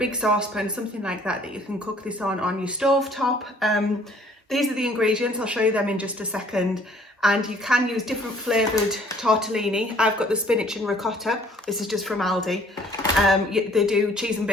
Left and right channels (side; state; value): both; normal; correlation 0.58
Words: saucepan, something like that you can cook this on your stove top. These are the ingredients. I'll show you them in just a second. And you can use different flavoured tortellini. I've got the spinach and ricotta. This is just from Aldi. They do cheese and